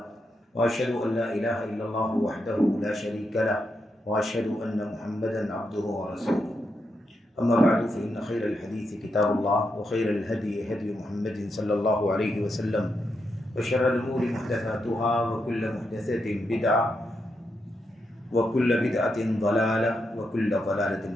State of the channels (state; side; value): normal; both; correlation 0.83